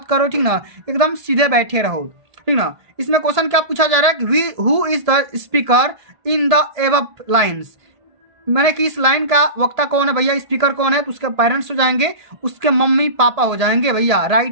करो, ठीक ना, एकदम सीधे बैठे रहो, ठीक ना। इसमें क्वेश्चन क्या पूछा जा रहा है कि who is the speaker in the above lines, मैंने कि इस लाइन का वक्ता कौन है भैया, स्पीकर कौन है, तो उसके पेरेंट्स हो जाएंगे, उसके मम्मी पापा हो जाएंगे भैया।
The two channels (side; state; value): left; late; 1.7 ms